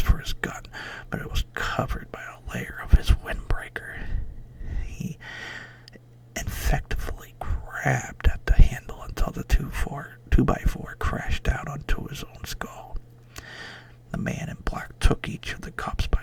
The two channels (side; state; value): both; identical; correlation 1.00